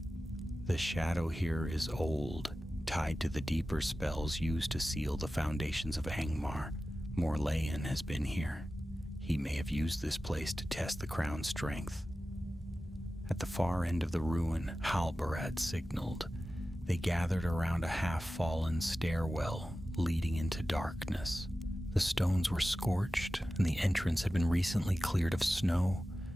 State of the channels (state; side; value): normal; both; correlation 0.94